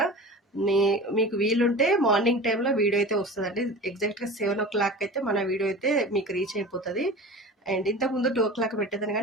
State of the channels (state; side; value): normal; both; correlation 0.35